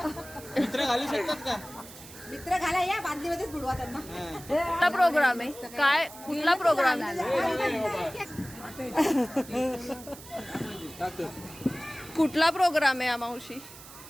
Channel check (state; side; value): noise; right; hiss, 17 dB below the sound